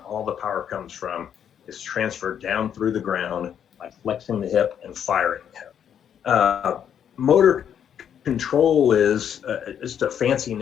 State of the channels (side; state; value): right; quieter; 8.8 dB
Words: all the power comes from, is transferred down through the ground by flexing the hip and firing the hip. Motor control is just a fancy